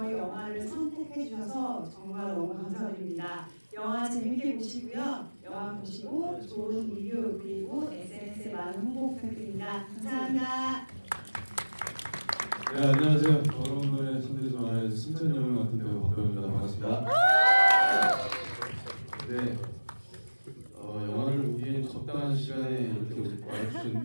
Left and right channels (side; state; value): both; inverted; correlation -1.00